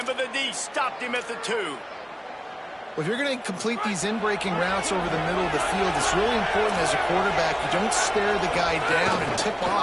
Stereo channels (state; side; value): identical; both; correlation 1.00